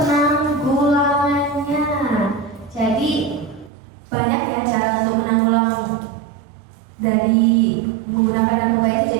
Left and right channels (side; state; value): left; drops out; at 3.7 s